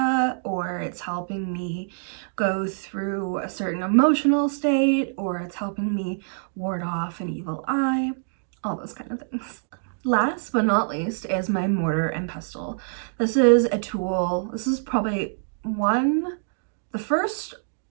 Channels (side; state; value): left; silent; digital silence